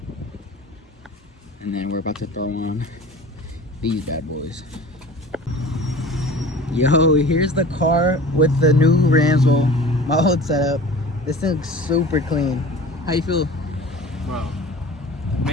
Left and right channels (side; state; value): both; normal; correlation 0.40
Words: And then we're about to throw on these bad boys. Yo, here's the car with the new rims. Well, my old setup. This thing looks super clean. How you feel? Bro,